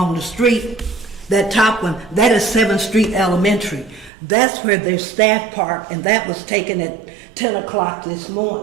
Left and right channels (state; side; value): drops out; left; at 4.1 s